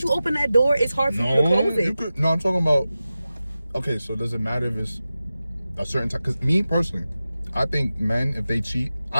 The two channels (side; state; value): both; inverted; correlation -0.94